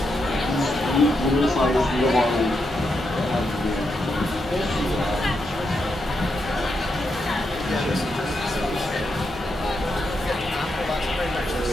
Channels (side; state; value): both; normal; correlation 0.83